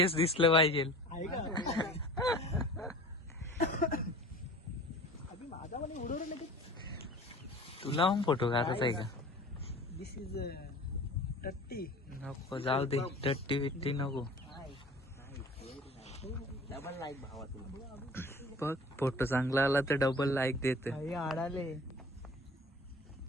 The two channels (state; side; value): normal; both; correlation 0.43